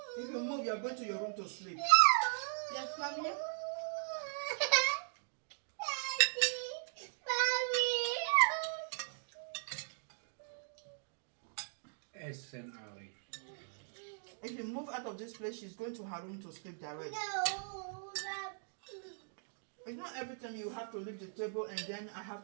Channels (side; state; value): left; silent; digital silence